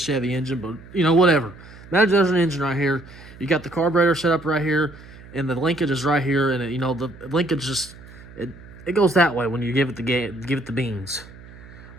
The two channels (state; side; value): noise; right; hum, 19 dB below the sound